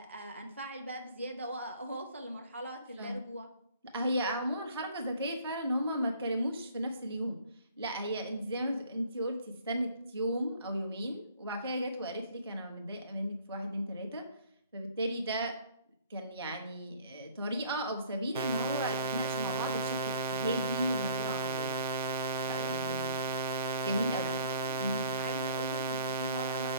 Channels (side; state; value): both; inverted; correlation -0.55